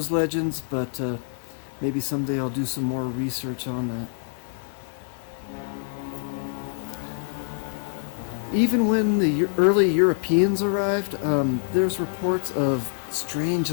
legends, but maybe someday I'll do some more research on that. Even when the early Europeans arrived, there's reports of strange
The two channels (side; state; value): right; silent; 61 dB below the other